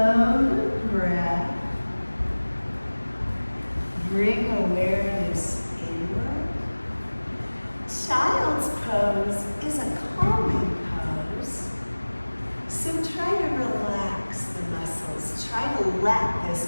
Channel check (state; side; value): inverted; both; correlation -1.00